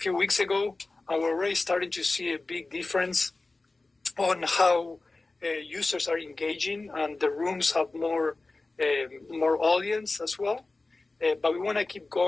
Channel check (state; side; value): quieter; right; 3.3 dB